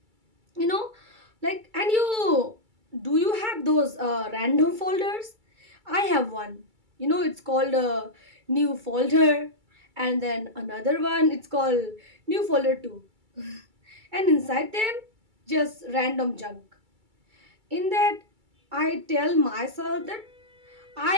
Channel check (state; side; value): late; left; 2.3 ms